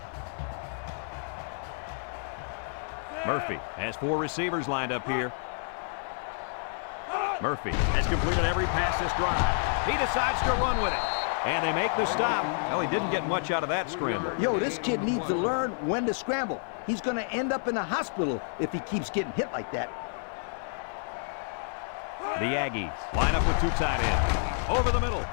Murphy has 4 receivers lined up here. Murphy has completed every pass this drive. He decides to run with it. And they make the stop. Well, he didn't get much out of that scramble. Yo, this kid needs to learn when to scramble. He's going to end up in a hospital if he keeps getting hit like that. The Aggies line up with 2 tight ends. Over the middle.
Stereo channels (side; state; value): right; silent; digital silence